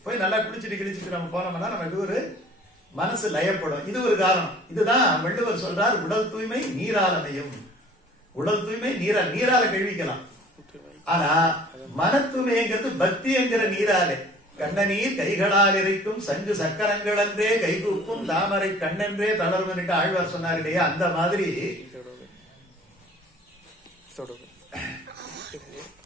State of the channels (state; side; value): normal; both; correlation 0.49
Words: போய் நல்லா குளிச்சுட்டு கிழிச்சிட்டு நம்ம போனோம்னா நமக்கு ஒரு மனசு லயப்படும். இது ஒரு காரணம். இதுதான் வள்ளுவர் சொல்றார், உடல் தூய்மை நீராலமையும். உடல் தூய்மை நீரால கழுவிக்கலாம். ஆனா மன தூய்மைங்கிறது பக்தி என்கிற நீராலே. கண்ணநீர் கைகளால் இறைக்கும் சங்கு சக்கரங்கள் என்றே கைகூப்பும் தாமரை கண்ணென்றே தளர்வன்ட்டு ஆழ்வார் சொன்னார் இல்லையா, அந்த மாதிரி